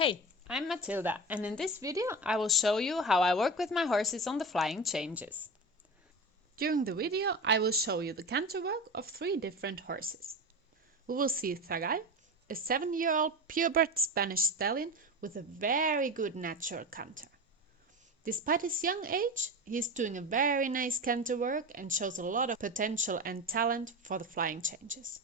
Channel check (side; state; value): both; normal; correlation 0.25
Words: I'm Matilda, and in this video I will show you how I work with my horses on the flying changes. During the video I will show you the canter work of 3 different horses. We will see Zagal, a 7-year-old purebred Spanish stallion with a very good natural canter. Despite his young age, he is doing a very nice canter work and shows a lot of potential and talent for the flying changes.